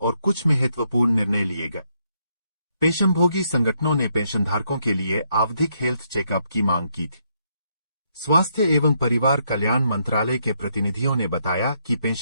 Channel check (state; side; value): inverted; both; correlation -0.75